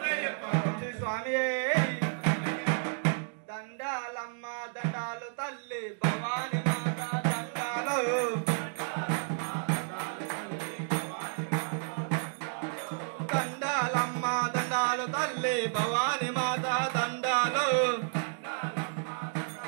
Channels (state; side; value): silent; left; digital silence